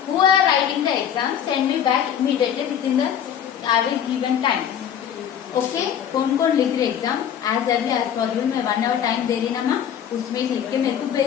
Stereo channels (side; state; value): right; quieter; 9.2 dB